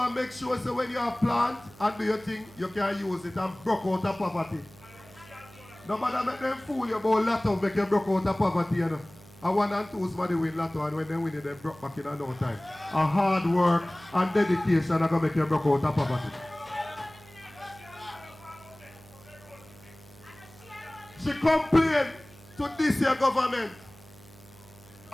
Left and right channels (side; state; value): right; noise; hum, 23 dB below the sound